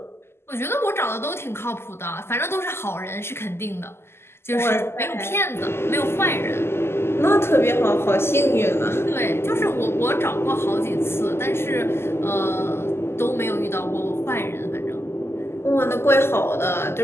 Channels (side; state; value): right; late; 0.12 ms